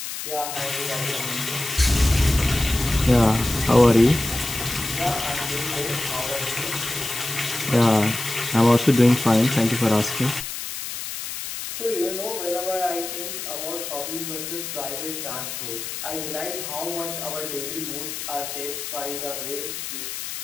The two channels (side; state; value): left; noise; hiss, 7 dB below the sound